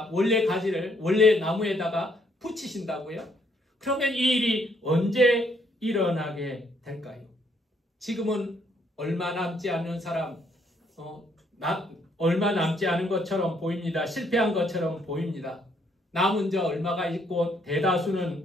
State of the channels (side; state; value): both; normal; correlation 0.69